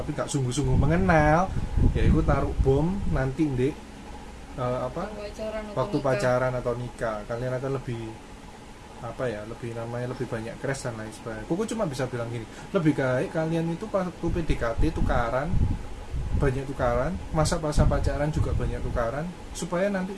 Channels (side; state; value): both; identical; correlation 1.00